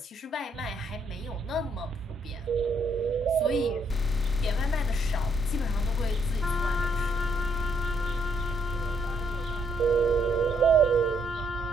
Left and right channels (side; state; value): both; normal; correlation 0.73